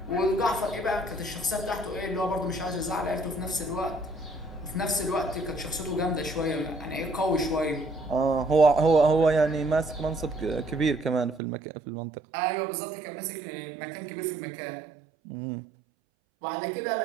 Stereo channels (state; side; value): drops out; left; at 11.4 s